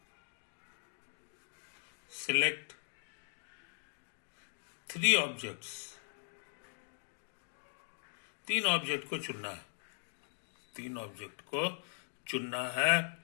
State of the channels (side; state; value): right; silent; digital silence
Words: 3 ऑब्जेक्ट्स, 3 ऑब्जेक्ट को चुनना है। 3 ऑब्जेक्ट को चुनना है